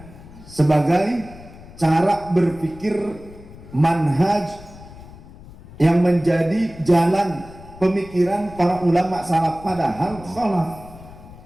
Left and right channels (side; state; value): left; noise; rumble, 18 dB below the sound